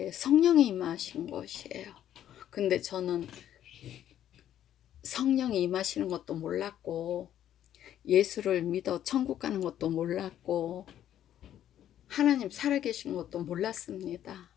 성령이 임하신 것이에요. 근데 저는 성령이 임하시는 것도 몰랐고 예수를 믿어 천국 가는 것도 몰랐고 하나님 살아계신 것도 몰랐습니다.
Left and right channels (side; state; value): right; quieter; 11.1 dB